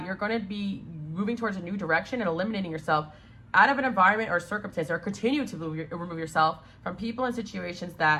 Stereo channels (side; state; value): both; identical; correlation 1.00